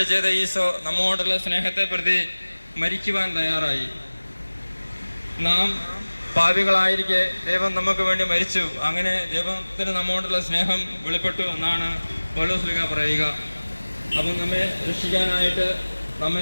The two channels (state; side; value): inverted; both; correlation -1.00